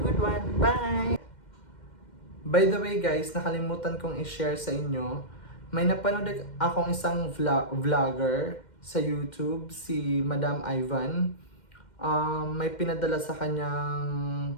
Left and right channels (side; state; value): right; late; 2.1 ms